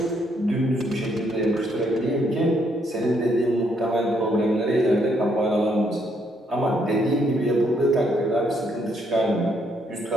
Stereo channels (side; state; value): both; normal; correlation 0.72